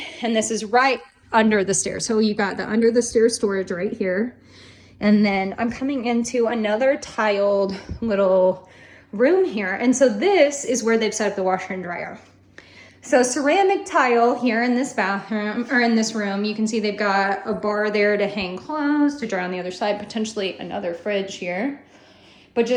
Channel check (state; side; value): identical; both; correlation 1.00